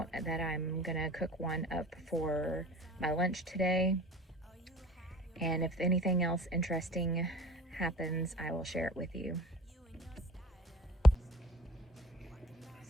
that I'm gonna cook one up for my lunch today. And if anything else interesting happens, I will share it with you.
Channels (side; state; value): both; normal; correlation 0.45